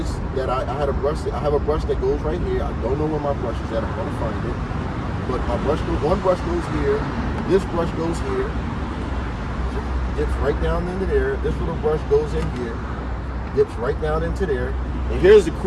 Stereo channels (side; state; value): both; identical; correlation 1.00